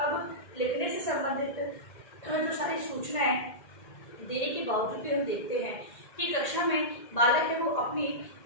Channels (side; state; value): right; late; 2.1 ms